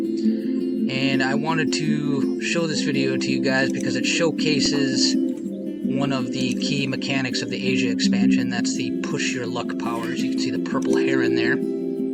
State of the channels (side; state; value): both; identical; correlation 1.00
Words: And I wanted to show this video to you guys because it showcases one of the key mechanics of the Asia expansion. That's the push your luck powers. You can see the purple heron there.